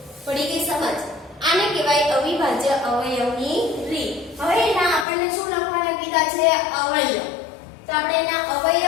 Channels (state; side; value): drops out; right; at 5.1 s